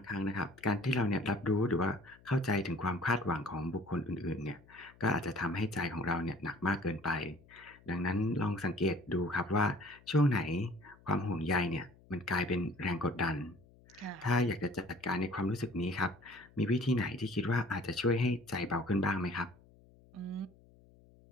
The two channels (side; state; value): left; noise; hum, 26 dB below the sound